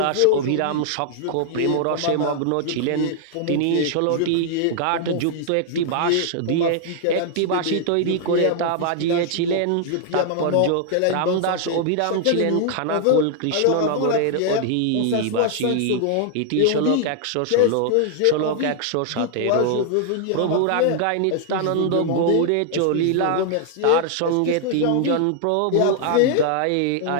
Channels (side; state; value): both; different; correlation 0.00